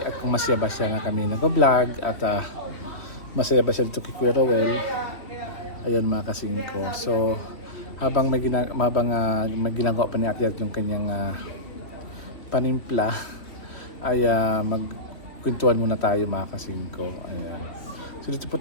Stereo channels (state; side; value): late; right; 3.3 ms